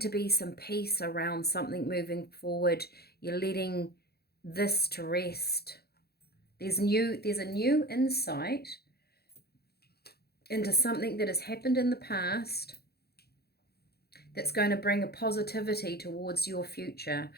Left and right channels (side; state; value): right; late; 0.46 ms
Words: be some peace around something moving forward. You're letting this to rest. There's a new insight into something that has happened in the past that's going to bring a positivity towards your future.